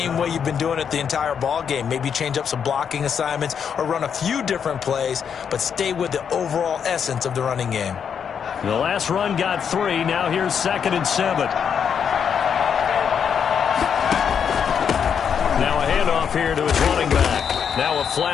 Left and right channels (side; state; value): right; quieter; 7.4 dB